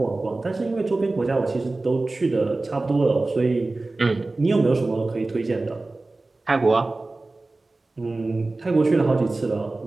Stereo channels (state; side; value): quieter; left; 3.2 dB